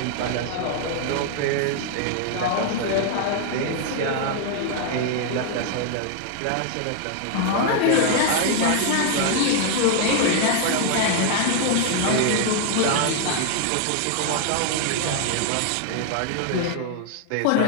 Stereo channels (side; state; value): both; different; correlation 0.00